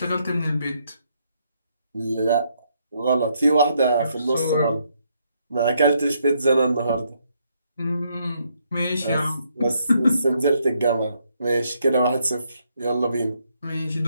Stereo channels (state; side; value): inverted; both; correlation -0.74